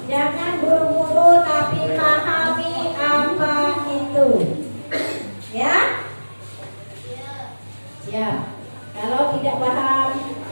Jangan buru-buru tapi pahami apa itu. Ya? Ya. Kalau tidak paham,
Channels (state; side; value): inverted; both; correlation -1.00